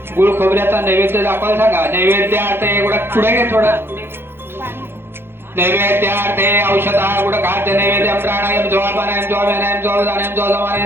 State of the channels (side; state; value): left; late; 0.11 ms